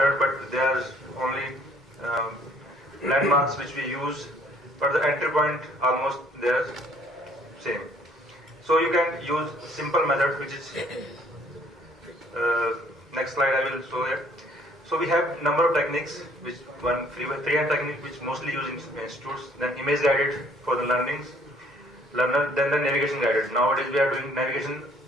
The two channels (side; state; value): both; normal; correlation 0.60